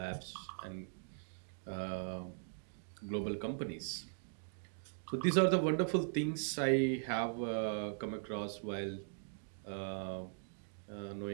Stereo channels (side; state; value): left; silent; digital silence